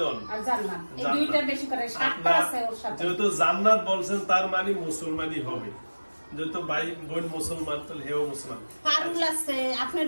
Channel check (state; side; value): inverted; both; correlation -1.00